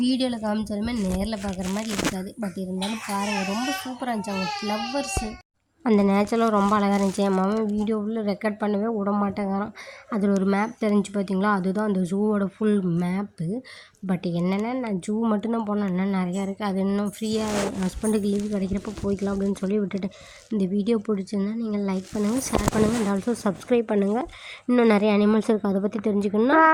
காமிச்சாலுமே நேரில் பார்க்குற மாதிரி இருக்காது. பட் இருந்தாலும் பாருங்கள், ரொம்ப சூப்பராக இருந்துச்சு. அங்கே ஃப்ளவர்ஸு, அந்த நேச்சரெலாம் ரொம்ப அழகாக இருந்துச்சு. என் மாமன் வீடியோவில் ரெக்கார்ட் பண்ணவே விட மாட்டேங்கிறான். அதில் ஒரு மேப் தெரிஞ்சு பார்த்தீங்களா? அதுதான் அந்த ஜூவோட ஃபுல் மேப்பு. பட் என்னென்னா நான் ஜூ மட்டும்தான் போனேன். இன்னும் நிறையா இருக்குது. அது இன்னும் ஃப்ரீயாக ஹஸ்பண்டுக்கு லீவு கிடைக்கிறப்ப போய்க்கலாம் அப்படின்னு சொல்லி விட்டுட்டேன். இந்த வீடியோ பிடிச்சிருந்தா நீங்கள் லைக் பண்ணுங்கள், ஷேர் பண்ணுங்கள், அண்ட் ஆல்சோ சப்ஸ்கிரைப் பண்ணுங்கள். இன்னும் நிறைய அனிமல்ஸ் இருக்குது, அதை பற்றி தெரிஞ்சுக்கணுன்னா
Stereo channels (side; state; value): both; identical; correlation 1.00